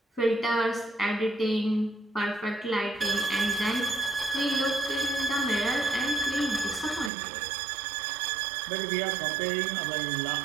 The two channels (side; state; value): left; drops out; at 7.1 s